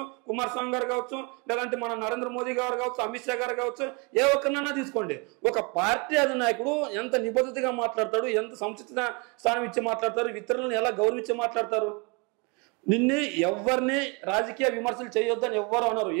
కుమారస్వామి గారు కావచ్చు, లేదంటే మన నరేంద్ర మోదీ గారు కావచ్చు, అమిత్ షా గారు కావచ్చు, ఏ ఒక్కరినైనా తీసుకోండి. ఒక పార్టీ అధినాయకుడు ఎంత నిబద్ధతగా మాట్లాడతాడు, ఎంత సముచిత స్థానం ఇచ్చి మాట్లాడతారు, ఇతరులను ఎలా గౌరవించి మాట్లాడతారు. నిన్ను ఎవరిని రాజకీయ విమర్శలు చేయొద్దని ఎవ్వరు అన్నారు.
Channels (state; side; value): quieter; left; 30.9 dB